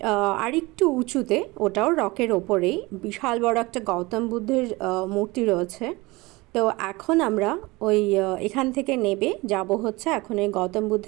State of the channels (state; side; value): quieter; left; 22.8 dB